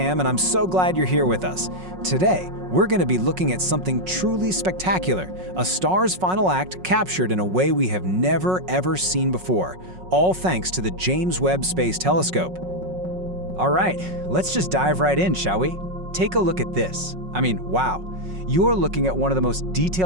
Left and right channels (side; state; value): left; late; 5.4 ms